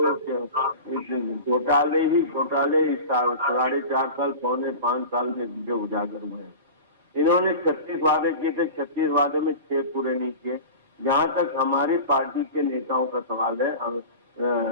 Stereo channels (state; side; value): inverted; both; correlation -0.33